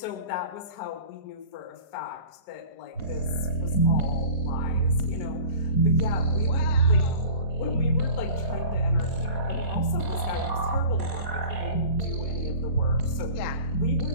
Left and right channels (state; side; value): late; right; 4.2 ms